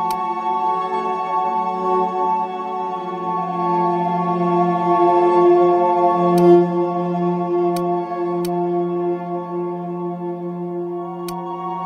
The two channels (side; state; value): both; identical; correlation 1.00